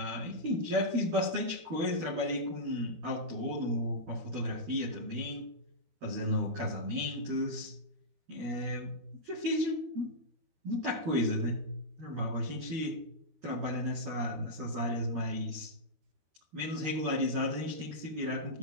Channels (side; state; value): left; late; 13 ms